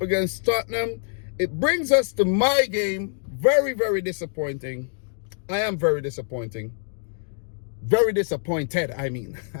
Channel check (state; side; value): silent; right; digital silence